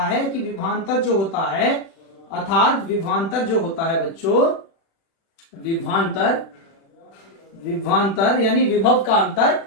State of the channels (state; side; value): late; right; 36 ms